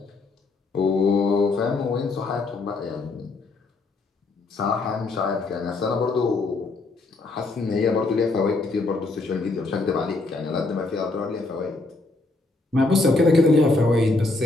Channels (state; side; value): quieter; right; 3.4 dB